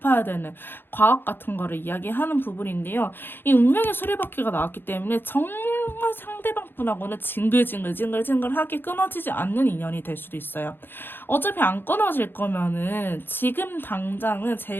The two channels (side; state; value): right; late; 0.10 ms